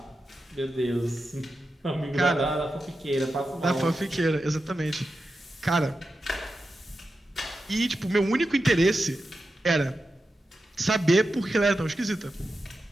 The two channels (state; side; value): normal; both; correlation 0.90